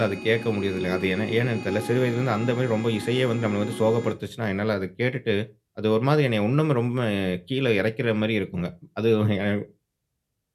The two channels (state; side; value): identical; both; correlation 1.00